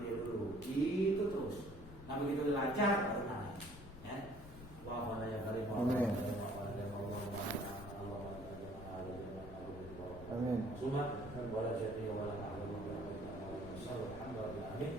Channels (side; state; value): left; noise; rumble, 13 dB below the sound